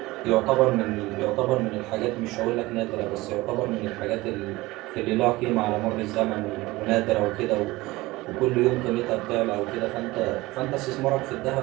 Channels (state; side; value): quieter; left; 20.1 dB